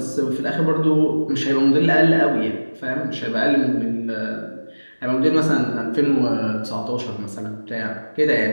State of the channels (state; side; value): inverted; both; correlation -1.00